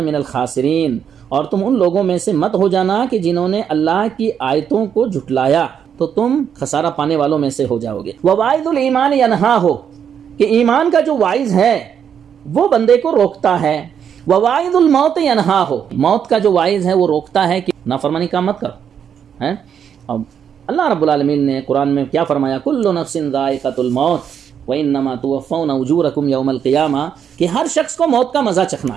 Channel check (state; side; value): quieter; left; 8.1 dB